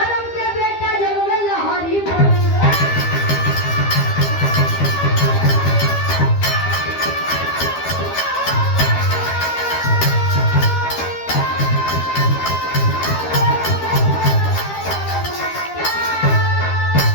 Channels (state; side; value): late; right; 12 ms